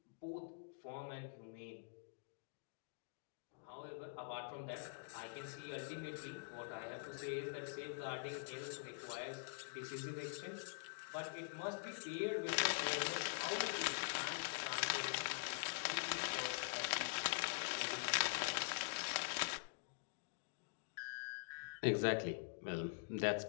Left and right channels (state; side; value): silent; right; digital silence